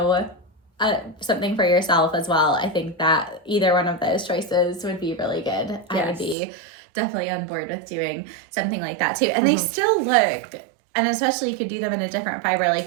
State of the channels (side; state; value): left; drops out; at 6.4 s